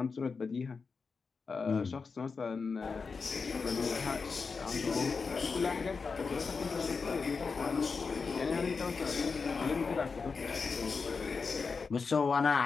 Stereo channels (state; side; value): quieter; right; 4.9 dB